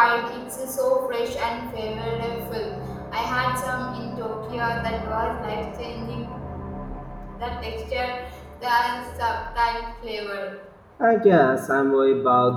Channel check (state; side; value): identical; both; correlation 1.00